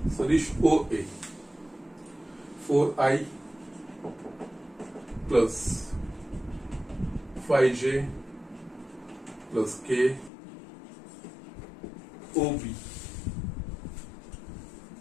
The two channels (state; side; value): drops out; right; at 10.3 s